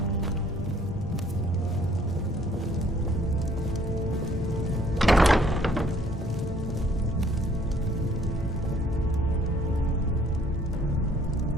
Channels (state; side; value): normal; both; correlation 0.61